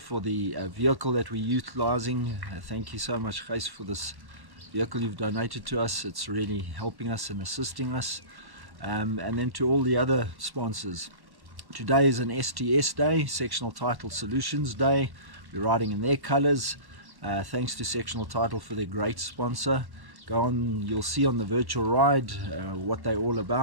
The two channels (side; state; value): left; late; 1.1 ms